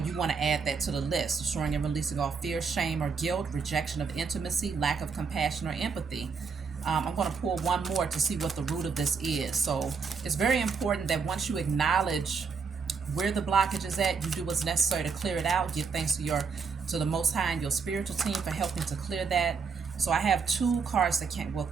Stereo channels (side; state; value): left; quieter; 5.5 dB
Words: want to add that to the list. Destroying and releasing all fear, shame, or guilt, rejection of intimacy, lack of compassion or empathy. I'm going to pull one more to see what the root of this is. So it's very important that once you acknowledge where the blockage is at, you do what's necessary to clear it out. Give thanks to the Most High and your spiritual team for helping to clear that. So I have two cards that can't, well,